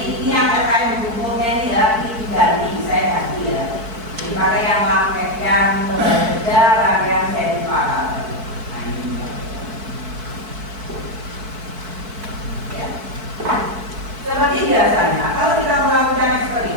ini yang terkait bukunya ini ya, ini diganti, saya ganti ya. Dipakai yang lembar kerja rangkaian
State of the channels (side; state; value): left; late; 4.6 ms